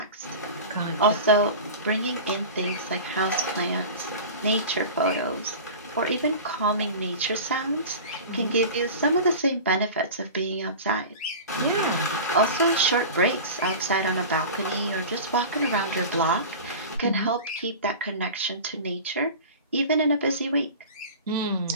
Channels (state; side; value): inverted; both; correlation -0.33